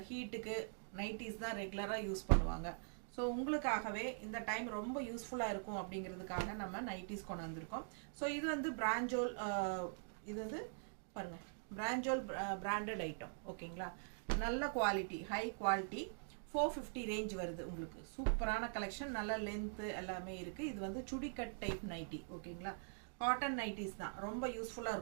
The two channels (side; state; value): left; silent; digital silence